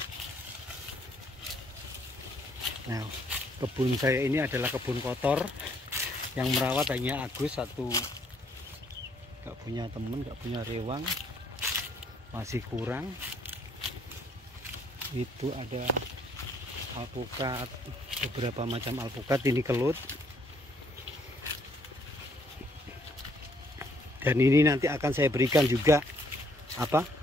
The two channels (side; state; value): both; normal; correlation 0.67